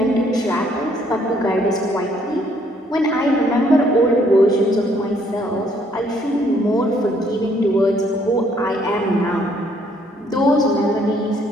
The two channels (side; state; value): both; normal; correlation 0.66